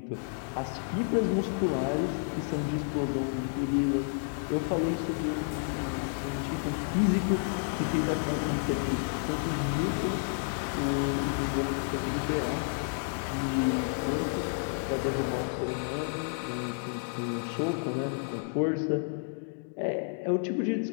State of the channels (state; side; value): silent; right; digital silence